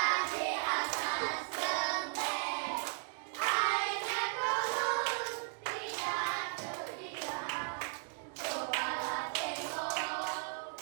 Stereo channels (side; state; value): left; silent; 54 dB below the other